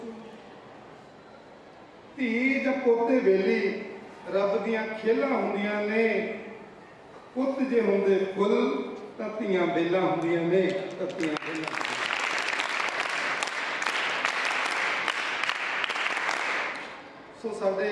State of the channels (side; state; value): both; identical; correlation 1.00